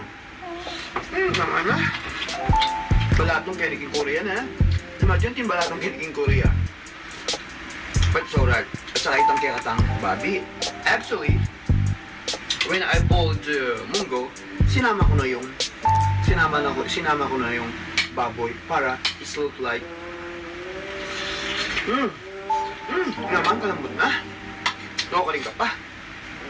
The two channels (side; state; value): both; identical; correlation 1.00